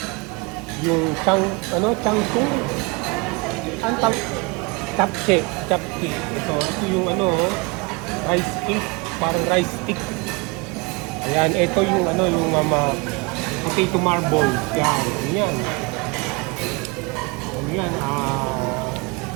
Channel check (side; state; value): left; quieter; 28.2 dB